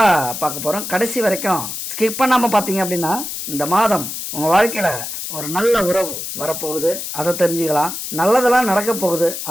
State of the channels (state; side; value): noise; left; hiss, 6 dB below the sound